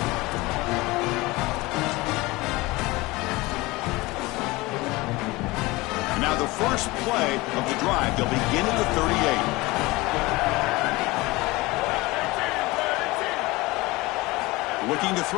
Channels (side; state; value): right; quieter; 21.7 dB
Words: And now the first play of the drive. They'll begin at the 38. Looking to